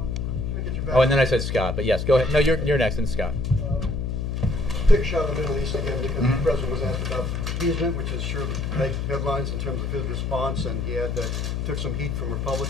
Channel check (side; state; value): left; noise; hum, 2 dB below the sound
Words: Oh, and then I said Scott, but yes, go ahead. No, you're next, and Scott. Take a shot at the Middle East again, because the president was asked about appeasement, which is sure to make headlines in terms of his response, and he had took some heat from